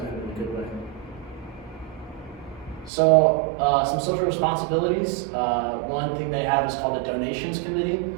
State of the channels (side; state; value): left; drops out; at 2.9 s